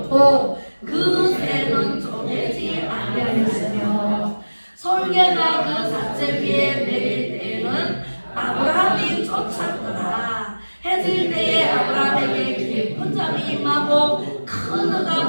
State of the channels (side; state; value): both; inverted; correlation -1.00